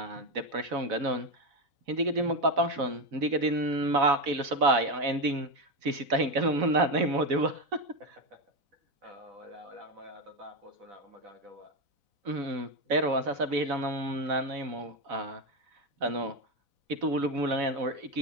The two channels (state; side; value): late; left; 4.0 ms